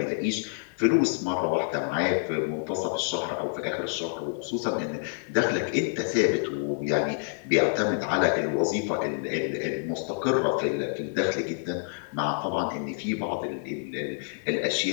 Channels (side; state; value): right; silent; digital silence